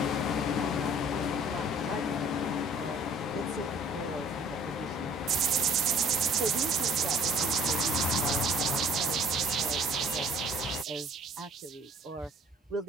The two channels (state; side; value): normal; both; correlation 0.53